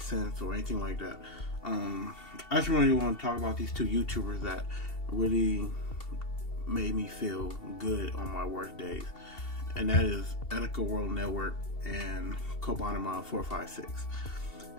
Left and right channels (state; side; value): late; right; 2.7 ms